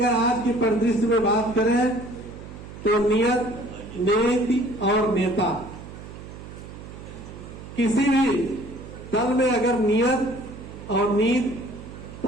आज के परिदृश्य में बात करें तो नियत, नीति और नेता, किसी भी दल में अगर नियत और नीति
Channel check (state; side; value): noise; right; hum, 14 dB below the sound